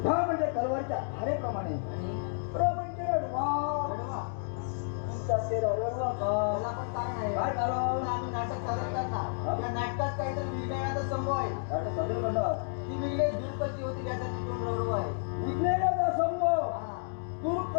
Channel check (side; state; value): right; silent; digital silence